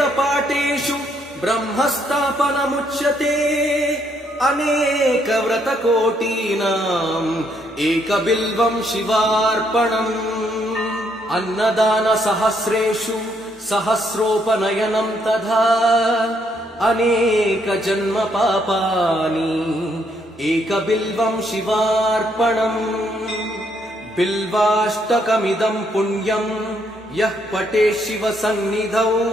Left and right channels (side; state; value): both; normal; correlation 0.72